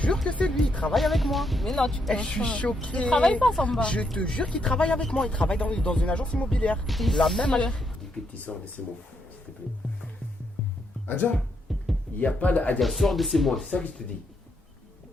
jure que c'est lui, il travaille avec moi. Mais non, tu Eh, je suis choquée. Il travaille pas, Samba. Je te jure qu'il travaille avec moi, il travaille dans une agence immobilière. La même agence. Que tu sors de ces mots, s'il te plaît. Adja, il n'y a pas d'Adja, sors de ces mots, c'est ça que je te dis.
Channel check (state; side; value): normal; both; correlation 0.78